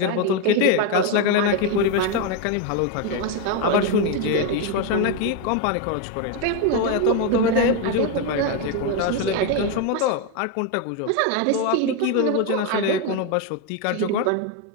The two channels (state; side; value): different; both; correlation 0.02